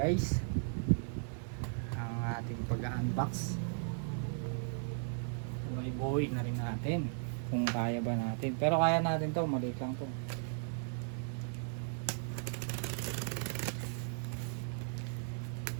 ang ating pag-unbox. Buuin na rin natin kung kaya ba natin, pero kaya natin to, maliit lang to.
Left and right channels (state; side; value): silent; left; digital silence